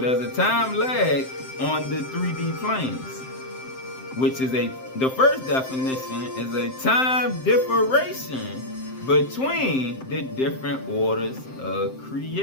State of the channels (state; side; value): late; right; 7.7 ms